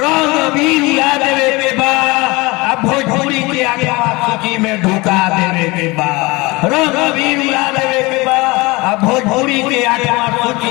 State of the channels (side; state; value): right; quieter; 23.5 dB